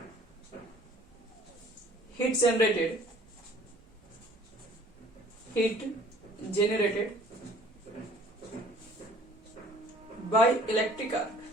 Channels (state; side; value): normal; both; correlation 0.52